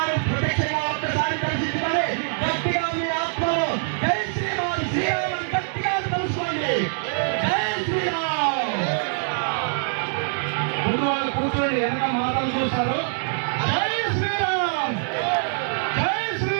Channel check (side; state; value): left; silent; digital silence